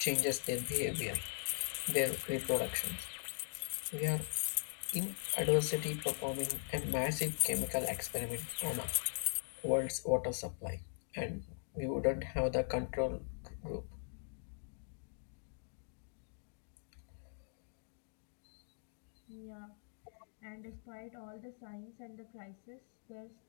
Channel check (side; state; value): right; silent; digital silence